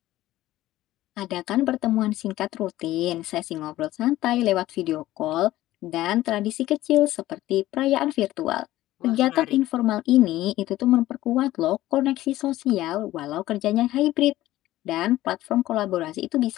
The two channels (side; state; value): right; quieter; 15.6 dB